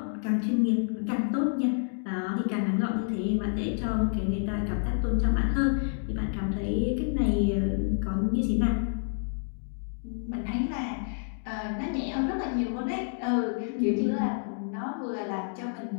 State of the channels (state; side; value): silent; right; digital silence